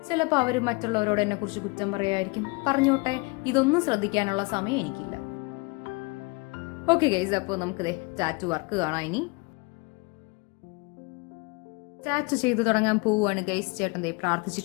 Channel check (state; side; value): quieter; right; 27.9 dB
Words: ചിലപ്പോൾ അവർ മറ്റുള്ളവരോട് എന്നെ കുറിച്ച് കുറ്റം പറയുമായിരിക്കും. പറഞ്ഞോട്ടെ, ഇതൊന്നും ശ്രദ്ധിക്കാനുള്ള സമയം എനിക്കില്ല. ഓക്കെ ഗൈസ്, അപ്പോൾ നമുക്ക് ടാറ്റു വർക്ക് കാണാം. ഇനി ടാറ്റു ചെയ്ത് തുടങ്ങാൻ പോവുകയാണ് ഗൈസ്. ചേട്ടൻ